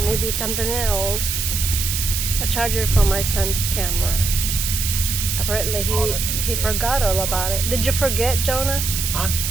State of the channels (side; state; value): right; noise; hiss, 2 dB below the sound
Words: maybe something else. A charger for my son's camera. Apparently he forgot all about it. Did you forget, Jonah? Huh?